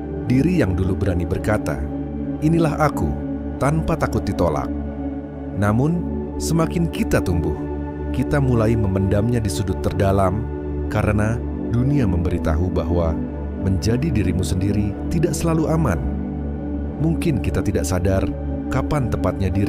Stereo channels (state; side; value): identical; both; correlation 1.00